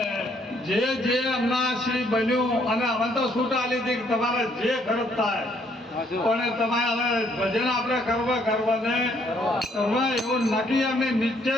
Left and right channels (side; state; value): both; normal; correlation 0.68